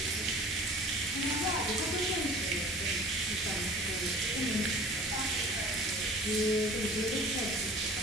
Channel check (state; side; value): normal; both; correlation 0.44